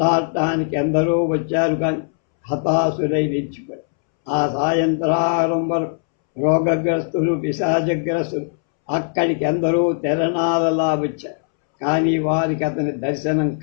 ఎందరో వచ్చారు. కానీ హతాశులై నిలిచిపోయారు. ఆ సాయంత్రం వరకు రోగగ్రస్తులు పిశాచగ్రస్తులు అక్కడికి ఎందరో తెరణాలలా వచ్చారు. కానీ వారికి అతని దర్శనం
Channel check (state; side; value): silent; right; 66 dB below the other